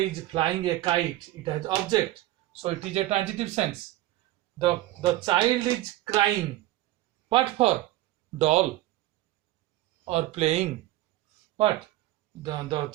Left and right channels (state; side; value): quieter; left; 16.0 dB